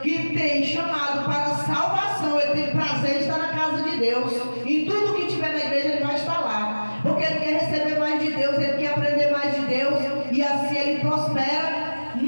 que tem chamado para a salvação, ele tem prazer de estar na casa de Deus. Em tudo que tiver na igreja ele vai estar lá, porque ele quer receber mais de Deus, ele quer aprender mais de Deus, e assim ele prospera,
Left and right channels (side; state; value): both; inverted; correlation -1.00